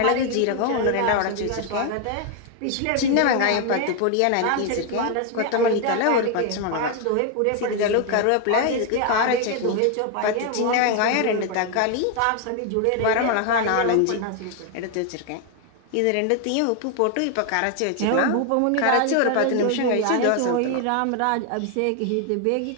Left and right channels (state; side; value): different; both; correlation 0.01